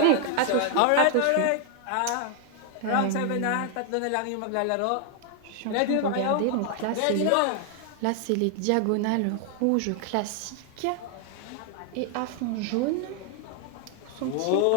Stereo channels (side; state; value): both; different; correlation 0.00